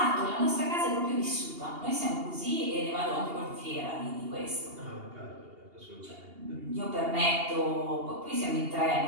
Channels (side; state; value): left; late; 2.8 ms